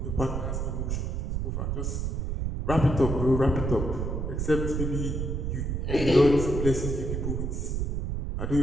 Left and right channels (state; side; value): noise; right; rumble, 1 dB below the sound